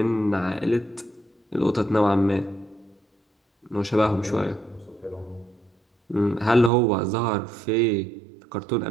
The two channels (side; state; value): left; drops out; at 6.7 s